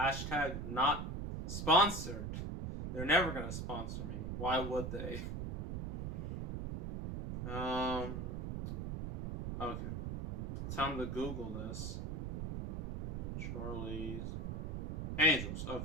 #not sponsored. They're never gonna sponsor me. Why would they? Okay. Time to Google this. Charlie's Angels.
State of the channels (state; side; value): noise; right; rumble, 4 dB below the sound